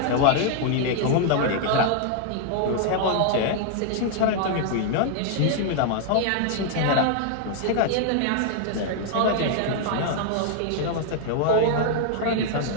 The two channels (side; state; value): both; different; correlation 0.00